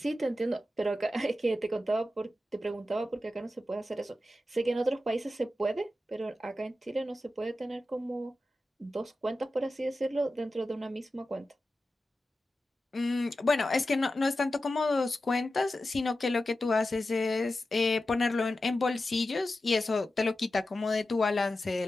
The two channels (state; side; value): normal; both; correlation 0.92